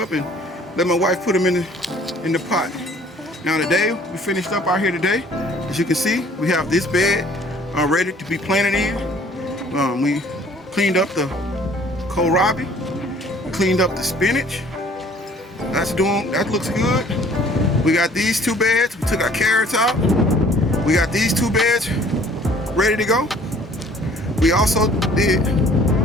and let my wife put them in the pot. Now today, we finished up out here today. As you can see, we have this bed ready to be planted in. We cleaned up the kohlrabi, cleaned up the spinach. That looks good. We got these two beds. We took our carrots out. We got these two beds ready to go. We also did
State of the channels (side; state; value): both; normal; correlation 0.55